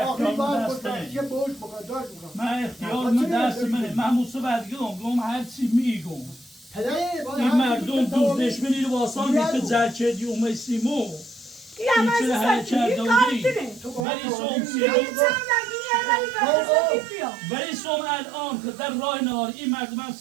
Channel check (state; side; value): drops out; left; at 14.1 s